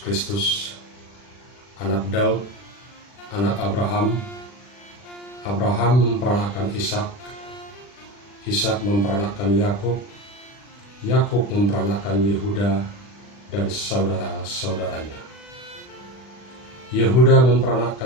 Kristus, anak Daud, anak Abraham. Abraham memperanakkan Ishak, Ishak memperanakkan Yakub, Yakub memperanakkan Yehuda dan saudara-saudaranya. Yehuda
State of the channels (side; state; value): right; late; 40 ms